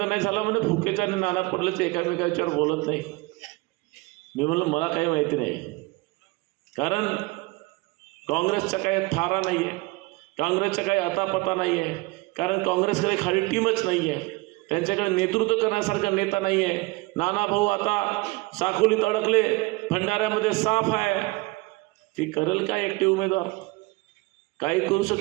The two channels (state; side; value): quieter; left; 23.9 dB